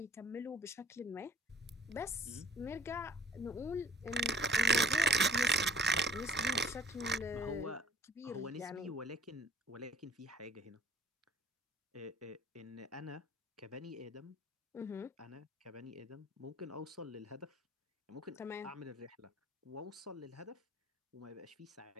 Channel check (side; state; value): both; normal; correlation 0.55